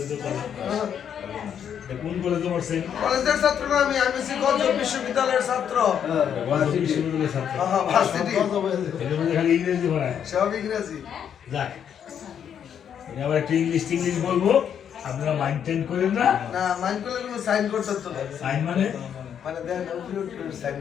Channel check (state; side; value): quieter; right; 8.6 dB